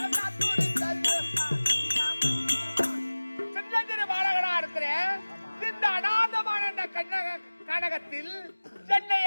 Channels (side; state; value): both; inverted; correlation -1.00